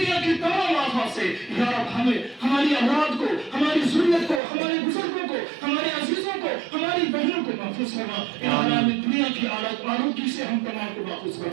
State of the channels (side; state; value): left; drops out; at 4.4 s